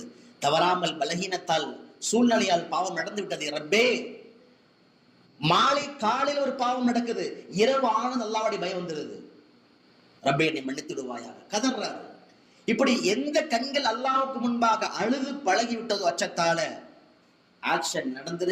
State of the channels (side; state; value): both; identical; correlation 1.00